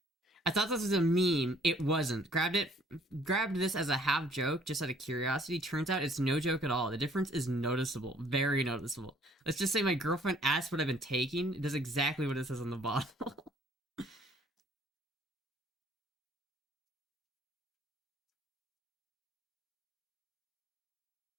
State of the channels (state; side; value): normal; both; correlation 0.59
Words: I thought this was a meme. It wasn't. Grabbed this as a half joke, just out of curiosity. Turns out it's no joke at all. The difference is noticeable. Very noticeable. Let's just say my girlfriend asked what I've been taking. It does exactly what it says on the bottle.